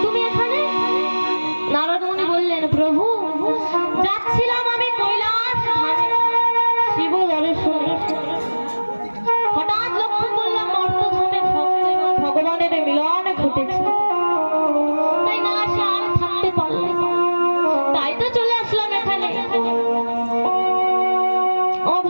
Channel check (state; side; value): inverted; both; correlation -1.00